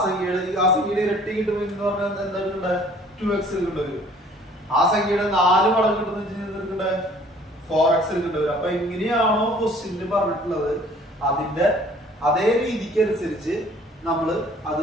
സംഖ്യയുടെ ഇരട്ടി കിട്ടുമെങ്കിൽ എന്ന് പറഞ്ഞാൽ എന്താണ് 2x കിട്ടുന്നത്. ആ സംഖ്യയുടെ 4 മടങ്ങ് കിട്ടുന്ന 4x കിട്ടുന്നത്. അപ്പൊ എങ്ങനെയാണോ ക്വസ്റ്റ്യനിൽ പറഞ്ഞിട്ടുള്ളത് അതിന്റെ അതേ രീതിക്ക് അനുസരിച്ച് നമ്മൾ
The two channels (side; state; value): both; normal; correlation 0.54